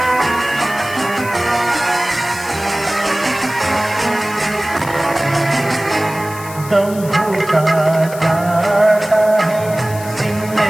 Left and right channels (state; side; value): noise; left; hiss, 15 dB below the sound